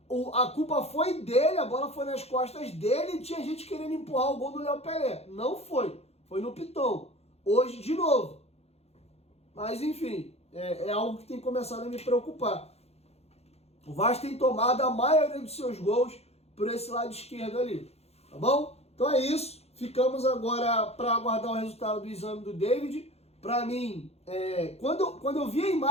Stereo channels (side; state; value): right; late; 0.30 ms